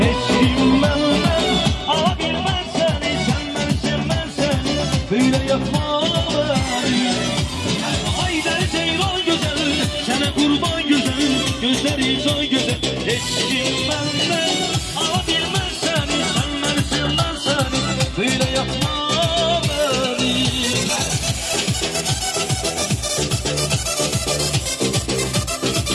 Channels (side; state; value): both; identical; correlation 1.00